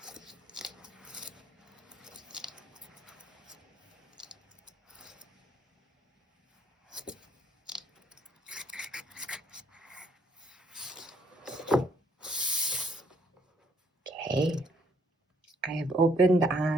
Okay, I have opened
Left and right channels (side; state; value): both; normal; correlation 0.67